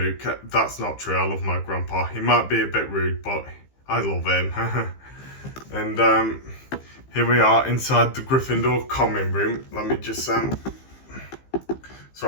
That's not true. I love my grandpa. He might be a bit rude, but I love him. And here we are inside the Gryffindor common room. Let me just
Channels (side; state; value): right; late; 15 ms